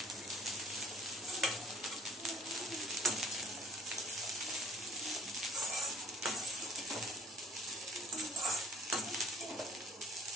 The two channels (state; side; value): normal; both; correlation 0.54